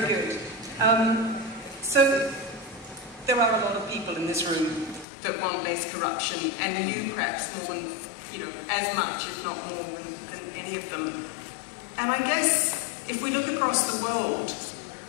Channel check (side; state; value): right; drops out; at 5.1 s